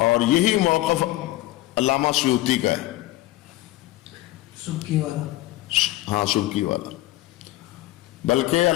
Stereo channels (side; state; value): right; quieter; 16.9 dB